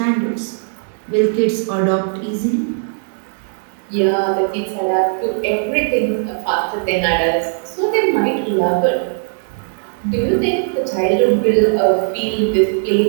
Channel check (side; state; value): left; silent; digital silence